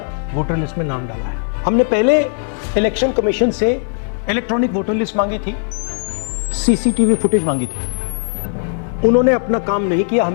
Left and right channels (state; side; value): silent; right; 67 dB below the other